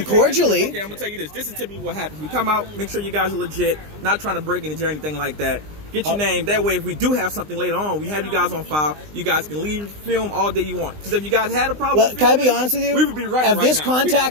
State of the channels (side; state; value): left; late; 20 ms